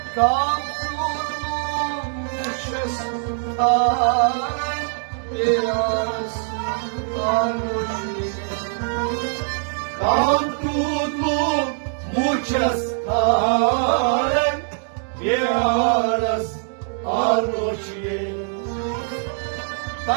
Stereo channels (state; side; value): silent; left; 64 dB below the other